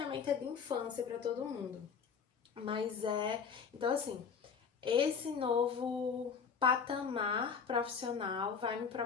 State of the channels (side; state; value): right; quieter; 6.2 dB